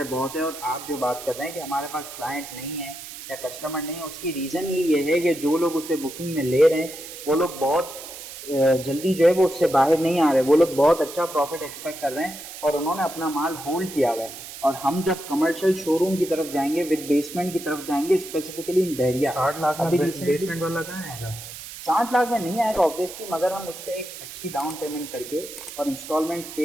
बहुत है और आप जो बात कर रहे हैं कि हमारे पास क्लाइंट नहीं है या कस्टमर नहीं है, उसकी रीज़न ये है कि जो लोग उसे बुकिंग में ले रहे हैं वो लोग बहुत जल्दी जो है वो उससे बाहर नहीं आ रहे। वो लोग बहुत अच्छा प्रॉफिट एक्सपेक्ट कर रहे हैं और उन्होंने अपना माल होल्ड किया हुआ है। और हम जब कमर्शियल शोरूम की तरफ जाएंगे, विद बेसमेंट की तरफ जाएंगे, स्पेसिफिकली इन बहरिया, 60 लाख में बेसमेंट वाला कहाँ आएगा? 60 लाख में नहीं आएगा ऑब्वियसली, मगर हम उस पर एक अच्छी डाउन पेमेंट करके और इंस्टॉलमेंट्स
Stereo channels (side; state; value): right; noise; hiss, 12 dB below the sound